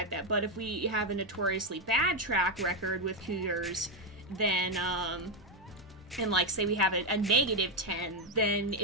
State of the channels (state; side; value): normal; both; correlation 0.06